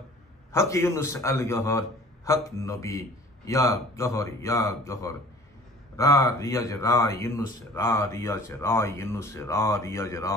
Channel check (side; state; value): both; normal; correlation 0.49